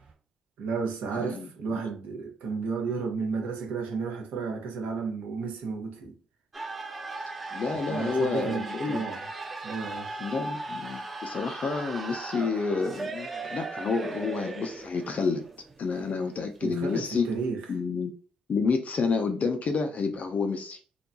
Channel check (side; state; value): both; normal; correlation 0.73